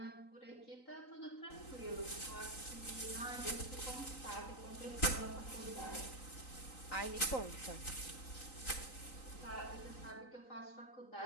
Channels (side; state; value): right; late; 3.9 ms